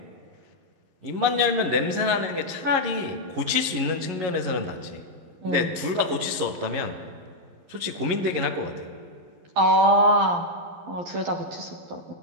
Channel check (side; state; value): left; late; 11 ms